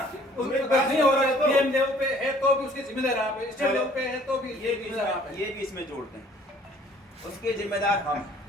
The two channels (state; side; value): normal; both; correlation 0.56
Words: नहीं हो रहा है पीएम लेवल पे है तो भी उसके जिम्मेदार आप है, स्टेट लेवल पे है तो भी ये भी इसमें जोड़ते हैं, उसके जिम्मेदार हम।